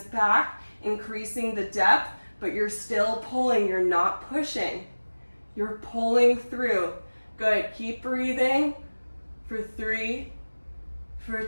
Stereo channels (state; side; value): inverted; both; correlation -1.00